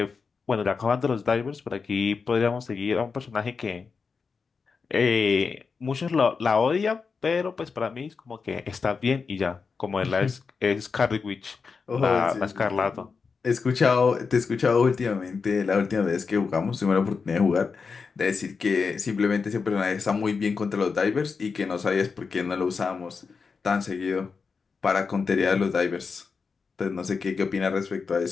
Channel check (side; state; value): right; quieter; 5.1 dB